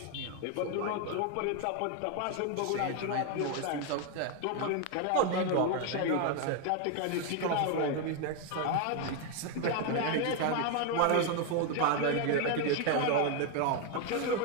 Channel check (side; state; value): both; different; correlation 0.01